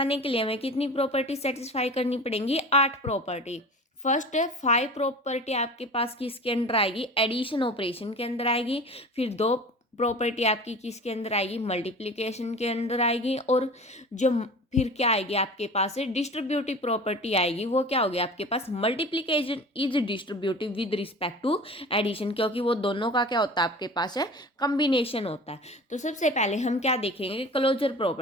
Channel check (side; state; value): both; normal; correlation 0.37